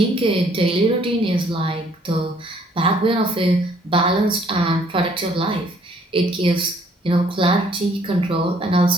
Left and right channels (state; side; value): normal; both; correlation 0.63